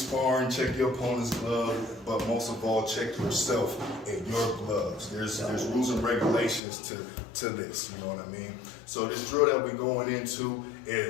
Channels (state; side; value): drops out; right; at 6.6 s